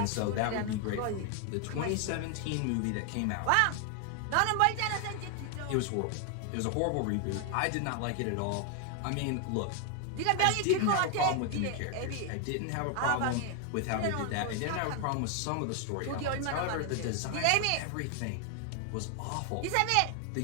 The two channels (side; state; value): both; different; correlation 0.00